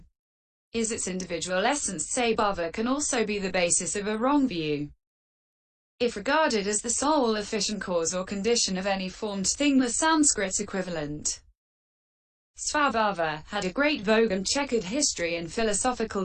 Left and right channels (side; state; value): both; identical; correlation 1.00